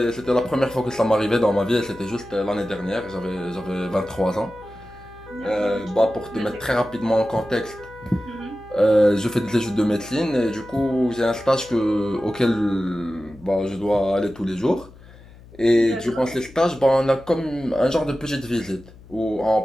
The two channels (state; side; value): noise; left; hum, 21 dB below the sound